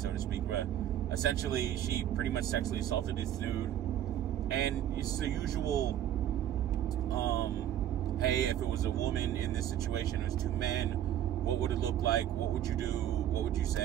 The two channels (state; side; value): quieter; left; 11.3 dB